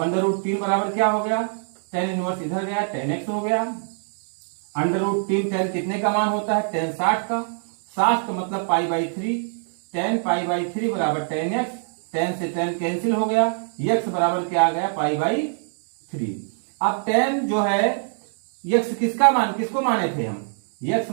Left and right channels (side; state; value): left; silent; digital silence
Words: बराबर क्या हो गया, tan इनवर्स इधर गया, tan x हो गया। √3 tan कितने का मान होता है? tan 60 का। 60 का मतलब π/3। tan π/3 बराबर tan x। tan से tan कैंसिल हो गया, x बराबर क्या आ गया? π/3। अब tan जो है, x किसका मान, किसको माने थे हम? x